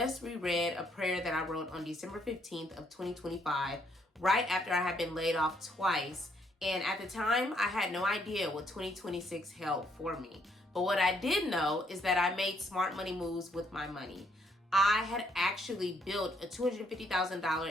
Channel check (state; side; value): normal; both; correlation 0.71